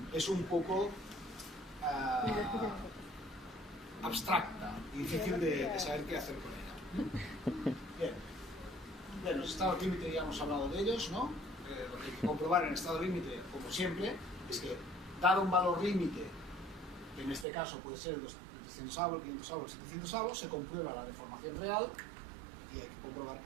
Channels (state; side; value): drops out; left; at 17.4 s